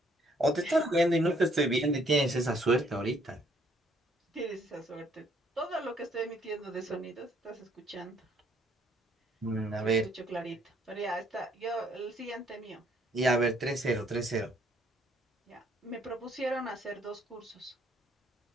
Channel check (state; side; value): normal; both; correlation 0.66